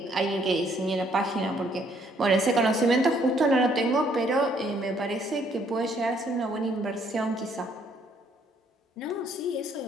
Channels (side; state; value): both; normal; correlation 0.66